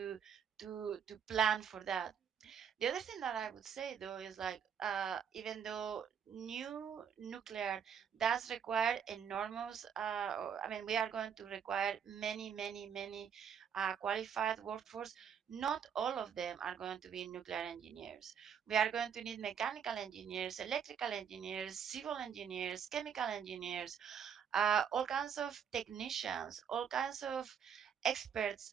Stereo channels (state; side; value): quieter; left; 7.8 dB